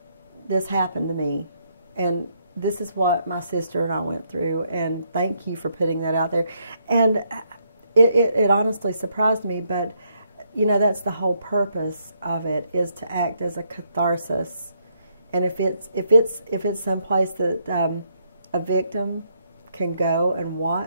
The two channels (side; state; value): both; inverted; correlation -0.74